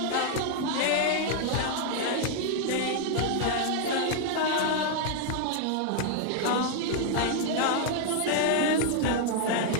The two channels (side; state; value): both; different; correlation 0.00